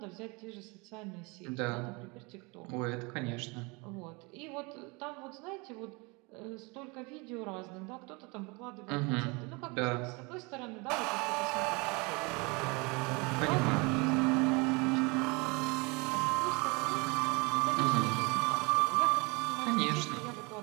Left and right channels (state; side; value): quieter; left; 28.1 dB